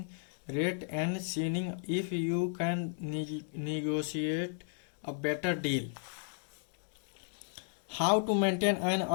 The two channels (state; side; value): silent; right; digital silence